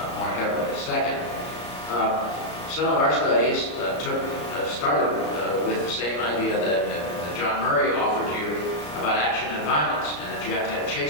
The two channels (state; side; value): late; right; 34 ms